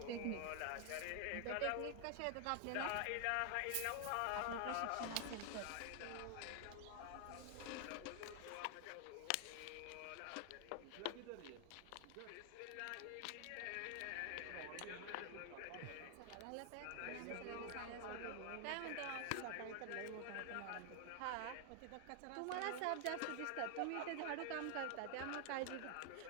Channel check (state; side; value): different; both; correlation 0.00